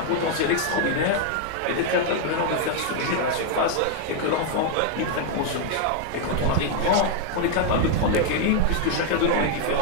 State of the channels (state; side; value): different; both; correlation 0.00